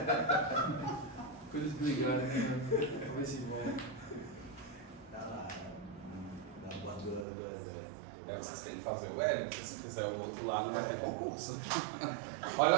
Coisas brigarem, né? Vai se embora. Tá lá, na bandura do exército. É que vocês têm que fazer o L, porque se fizer o outro lá não vai ter concurso.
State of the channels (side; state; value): left; drops out; at 7.2 s